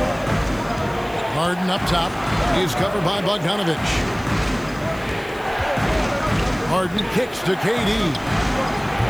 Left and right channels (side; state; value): left; noise; hiss, 24 dB below the sound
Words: Harden up top. He's covered by Bogdanovich. Harden kicks to KD.